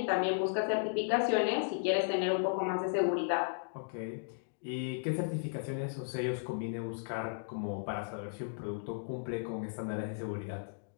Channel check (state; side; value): silent; right; digital silence